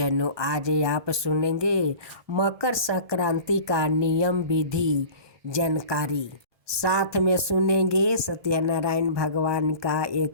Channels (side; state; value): left; late; 1.2 ms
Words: आज आप सुनेंगे मकर संक्रांति का नियम विधि जानकारी। साथ में सुनेंगे सत्यनारायण भगवान का